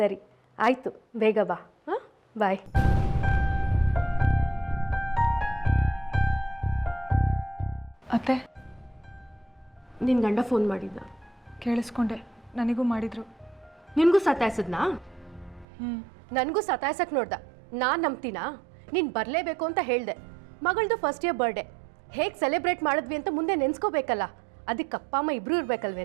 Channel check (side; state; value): left; drops out; at 15.7 s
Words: ಆಯಿತು, ಬೇಗ ಬಾ. ಹಾಂ, ಬಾಯ್. ಅತ್ತೆ, ನಿನ್ನ ಗಂಡ ಫೋನ್ ಮಾಡಿದ್ದ? ಕೇಳಿಸ್ಕೊಂಡೆ, ನನಗೂ ಮಾಡಿದ್ರು. ನಿನಗೂ ಸತಾಯಿಸಿದ್ನಾ? ನನಗೂ ಸತಾಯಿಸಕ್ಕೆ ನೋಡ್ದ. ನಾನು ನಂಬ್ತೀನಾ? ನೀನು ಬರಲೇಬೇಕು ಅಂತ ಹೇಳಿದೆ. ಮಗಳದು ಫಸ್ಟ್ ಇಯರ್ ಬರ್ಡೇ ಹೇಗೆ ಸೆಲೆಬ್ರೇಟ್ ಮಾಡಿದ್ವಿ ಅಂತ ಮುಂದೆ ನೆನೆಸ್ಕೋಬೇಕಲ್ಲ. ಅದಕ್ಕೆ ಅಪ್ಪ ಅಮ್ಮ ಇಬ್ಬರು